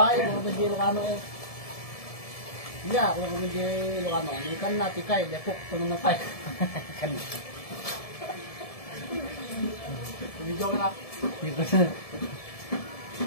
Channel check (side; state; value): right; late; 1.7 ms